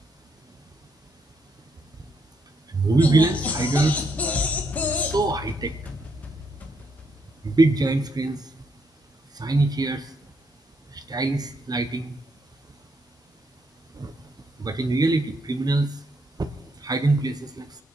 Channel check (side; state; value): both; normal; correlation 0.75